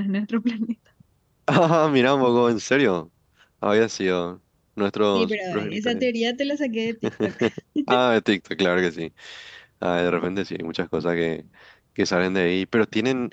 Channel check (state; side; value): identical; both; correlation 1.00